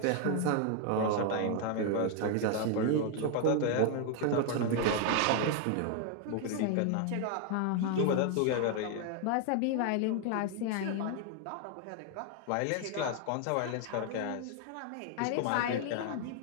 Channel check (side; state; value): both; different; correlation 0.00